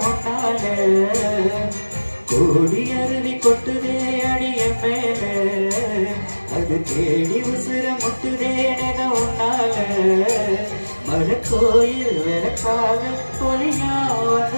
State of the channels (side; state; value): both; inverted; correlation -1.00